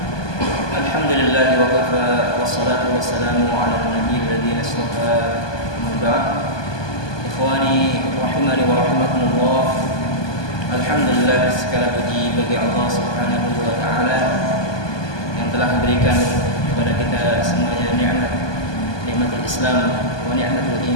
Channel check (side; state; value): right; late; 1.2 ms